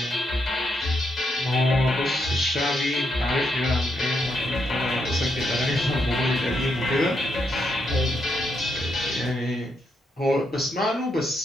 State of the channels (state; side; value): normal; both; correlation 0.79